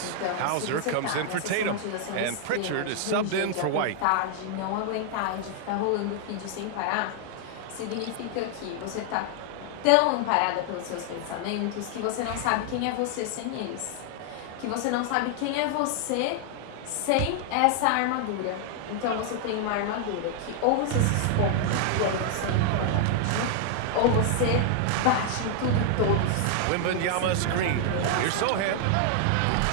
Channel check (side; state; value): both; different; correlation 0.00